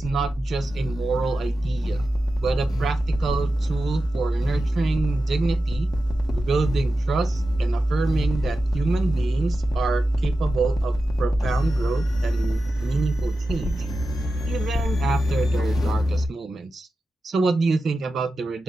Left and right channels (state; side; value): normal; both; correlation 0.92